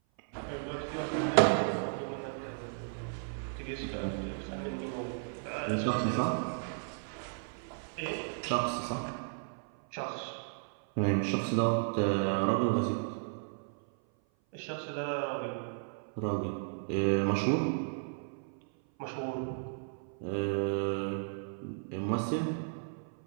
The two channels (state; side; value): silent; left; 55 dB below the other